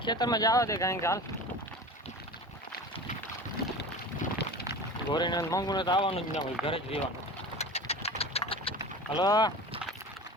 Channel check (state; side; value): normal; both; correlation 0.34